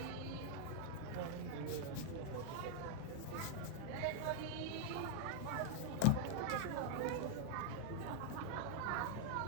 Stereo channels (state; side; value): different; both; correlation 0.00